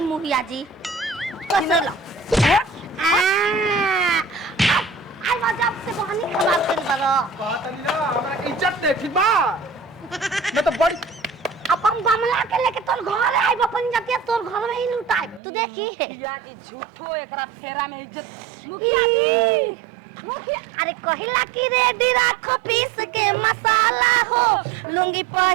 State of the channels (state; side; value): drops out; left; at 15.4 s